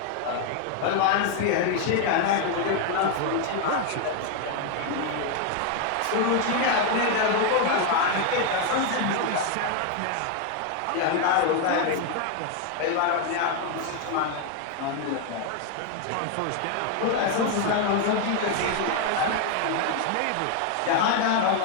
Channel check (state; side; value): different; both; correlation 0.01